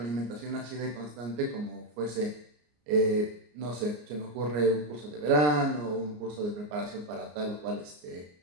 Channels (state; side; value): late; left; 34 ms